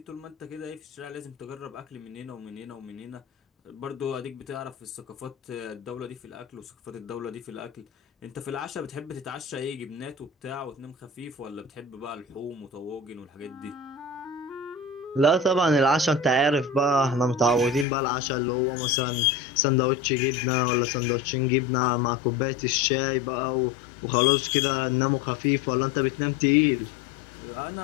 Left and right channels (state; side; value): drops out; right; at 17.9 s